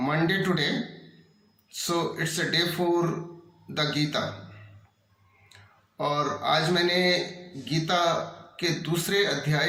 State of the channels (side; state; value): both; identical; correlation 1.00